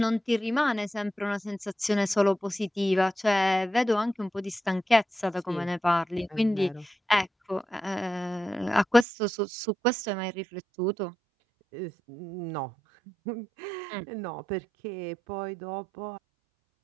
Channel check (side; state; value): left; drops out; at 9.1 s